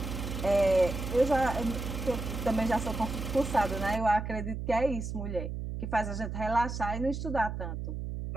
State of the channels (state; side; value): noise; right; hum, 5 dB below the sound